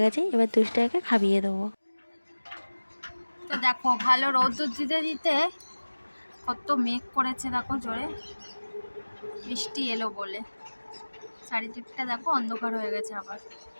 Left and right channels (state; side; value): inverted; both; correlation -1.00